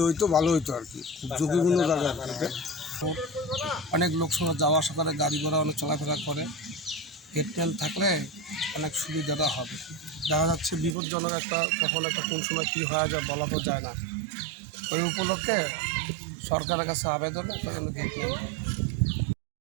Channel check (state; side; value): drops out; left; at 11.0 s